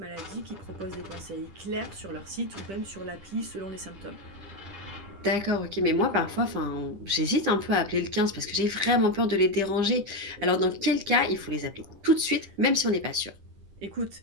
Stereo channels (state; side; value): late; left; 10 ms